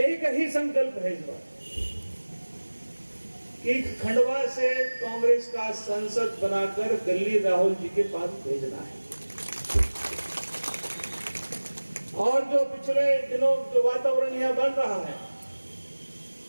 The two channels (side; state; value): both; inverted; correlation -1.00